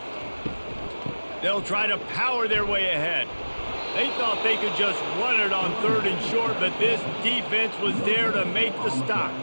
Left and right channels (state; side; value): inverted; both; correlation -1.00